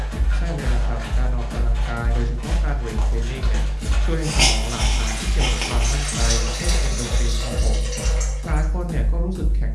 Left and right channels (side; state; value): both; identical; correlation 1.00